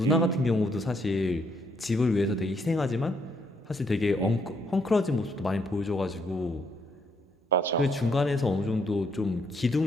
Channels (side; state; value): both; normal; correlation 0.72